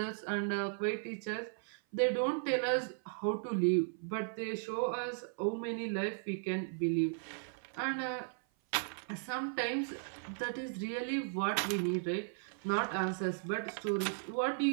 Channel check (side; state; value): left; silent; 54 dB below the other